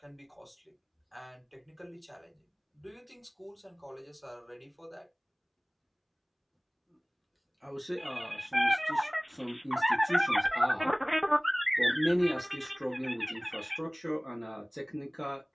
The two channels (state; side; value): identical; both; correlation 1.00